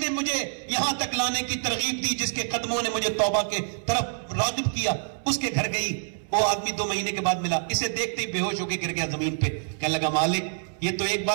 مجھے یہاں تک لانے کی ترغیب دی, جس کے قدموں نے مجھے توبہ کے طرف راغب کیا, اس کے گھر گئی. وہ آدمی 2 مہینے کے بعد ملا, اسے دیکھتے ہی بے ہوش ہو کے گر گیا زمین پہ. کہنے لگا مالک یہ تو ایک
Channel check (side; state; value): left; silent; 61 dB below the other